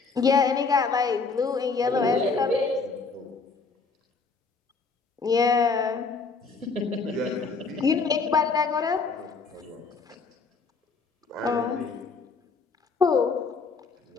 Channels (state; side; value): quieter; right; 4.5 dB